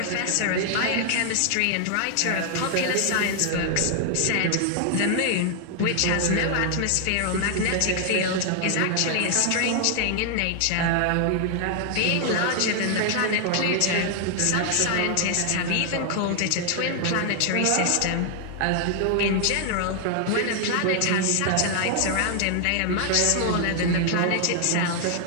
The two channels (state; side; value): different; both; correlation 0.00